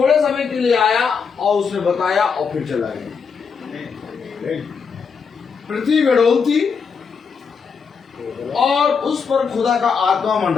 समय के लिए आया और उसने बताया और फिर चला गया। आमीन। पृथ्वी गड़ोल थी और उस पर खुदा का आत्मा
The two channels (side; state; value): right; quieter; 5.9 dB